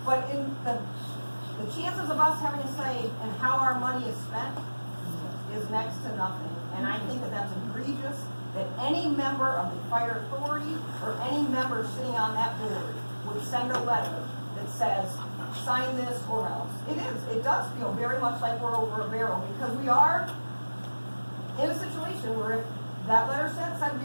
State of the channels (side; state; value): both; inverted; correlation -1.00